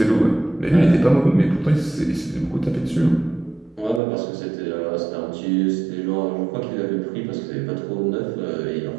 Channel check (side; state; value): left; drops out; at 4.0 s